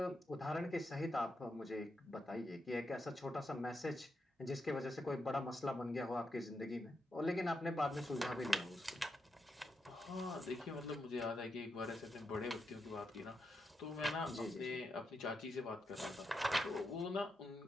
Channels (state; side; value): normal; both; correlation 0.84